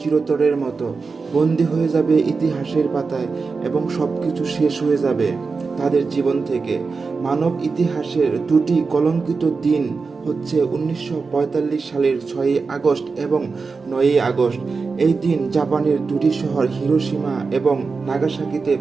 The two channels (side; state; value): left; quieter; 4.5 dB